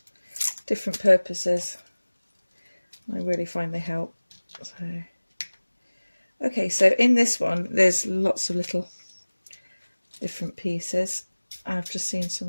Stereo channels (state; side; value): inverted; both; correlation -1.00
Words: different purposes. I really find they help. So, okay, so in this one there's lots of little different pieces. I've just seen